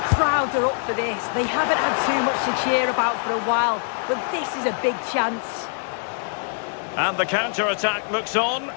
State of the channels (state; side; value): silent; right; 63 dB below the other